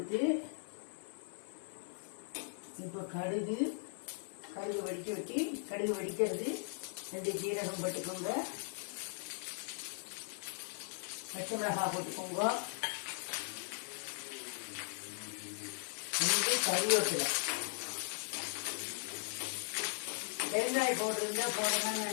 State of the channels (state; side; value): silent; right; digital silence